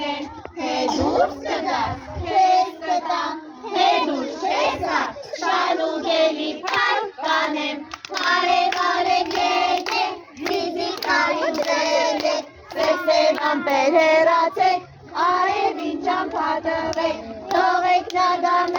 են, թե դուրս կգաս, քեզ կտամ, թե դուրս չես գա, շալուգելի փառք կանեմ, արև եկեք, ձիձի կարին դրեք, սև ամպեր հեռացեք, արևին ճամփա տվեք, թողեք նա գա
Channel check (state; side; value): identical; both; correlation 1.00